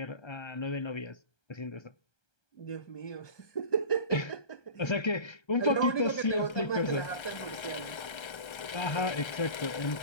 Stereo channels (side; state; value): right; late; 1.3 ms